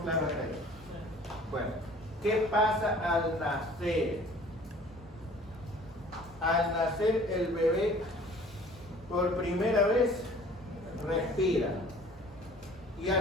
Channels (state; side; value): normal; both; correlation 0.50